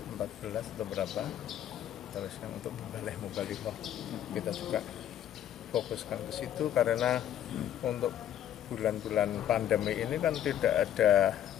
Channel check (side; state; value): right; quieter; 10.9 dB